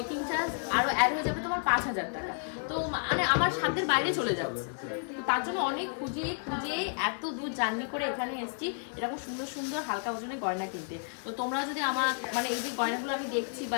চার্জ আরো অ্যাড হয়ে যাবে তোমার 5,000 টাকা, তো মানে আমার সাধ্যের বাইরে চলে যাচ্ছে। তো তার জন্য অনেক খুঁজে এত দূর জার্নি করে এখানে এসেছি এরকম সুন্দর সুন্দর হালকা ওজনের গয়না কিনতে। তো তোমরা যদি আমার মানে এই যে গয়নাগুলো আমি দেখছি বা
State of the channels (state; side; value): silent; right; 57 dB below the other